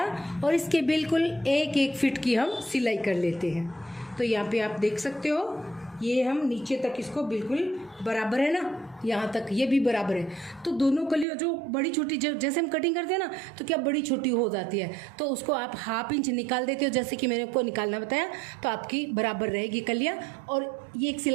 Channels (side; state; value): left; drops out; at 11.2 s